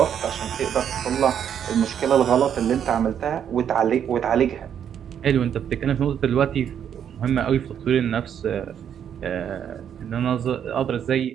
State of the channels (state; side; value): quieter; left; 8.8 dB